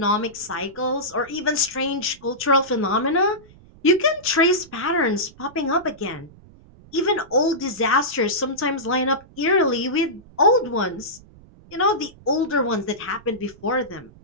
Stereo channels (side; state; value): right; noise; rumble, 24 dB below the sound